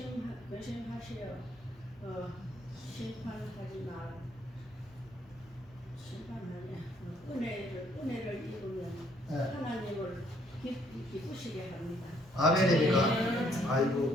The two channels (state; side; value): normal; both; correlation 0.66